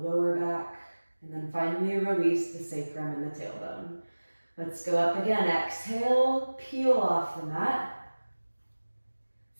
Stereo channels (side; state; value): both; inverted; correlation -1.00